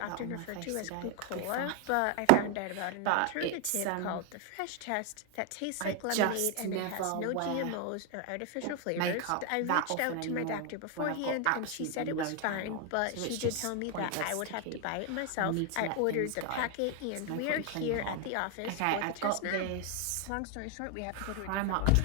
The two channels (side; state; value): both; different; correlation 0.00